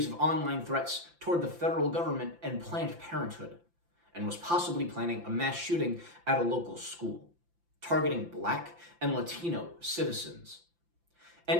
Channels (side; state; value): left; late; 5.8 ms